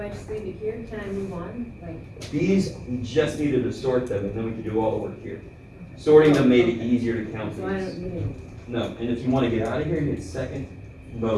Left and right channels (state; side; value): identical; both; correlation 1.00